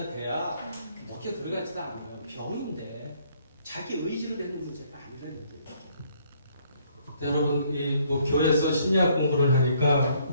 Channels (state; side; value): inverted; both; correlation -0.66